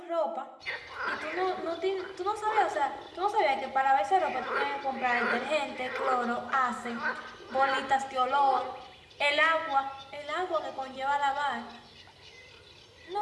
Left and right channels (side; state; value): both; identical; correlation 1.00